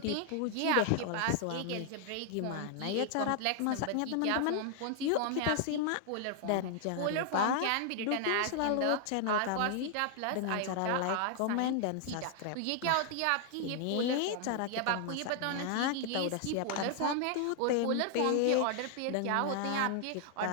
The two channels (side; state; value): both; different; correlation 0.00